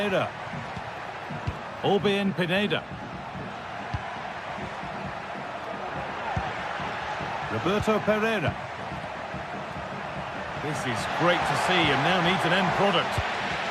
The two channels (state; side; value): identical; both; correlation 1.00